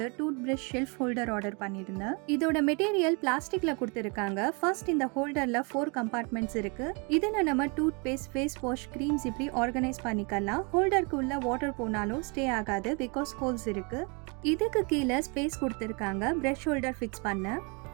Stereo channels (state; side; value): quieter; left; 32.5 dB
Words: tooth brush shelf holder order பண்ணியிருந்தேன். இதோட மெட்டீரியல் பிளாஸ்டிக்ல கொடுத்துருக்காங்க. ஃபர்ஸ்ட் இந்த ஹோல்டர்ல 4 கம்பார்ட்மெண்ட்ஸ் இருக்கு. இதுல நம்ம toothpaste, face wash, creams இப்படி ஆர்கனைஸ் பண்ணிக்கலாம். ஹோல்டருக்கு உள்ள வாட்டர் போனாலும் ஸ்டே ஆகாது பிகாஸ் ஹோல்ஸ் இருக்கு. இதுக்கு கீழே ஸ்பேஸ் கொடுத்துருக்காங்க பிரஷ் ஹோல்டர் ஃபிக்ஸ் பண்ண.